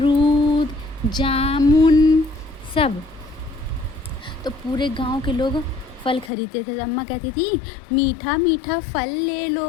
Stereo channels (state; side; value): drops out; right; at 6.3 s